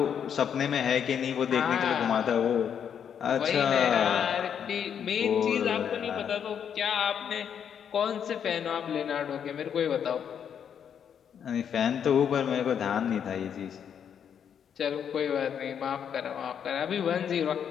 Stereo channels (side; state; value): right; quieter; 8.2 dB